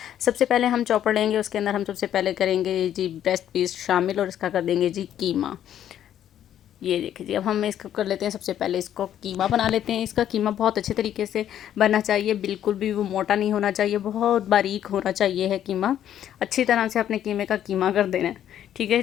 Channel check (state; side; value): quieter; right; 10.7 dB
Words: सबसे पहले हम चॉपर लेंगे, उसके अंदर हम सबसे पहले करेंगे जी ब्रेस्ट पीस शामिल और इसका कर देंगे जी कीमा। ये देखिए जी, अब हम इसको कर लेते हैं। सबसे पहले इसको कीमा बना लेते हैं। इसका कीमा बहुत अच्छे तरीके से बनना चाहिए, बिल्कुल भी वो मोटा नहीं होना चाहिए, बहुत बारीक होना चाहिए है कीमा। अच्छी तरह से अपने कीमे का कीमा कर देना है, ठीक है